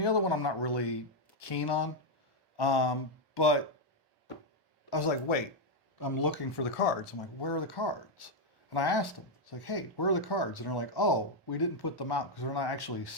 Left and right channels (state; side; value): normal; both; correlation 0.01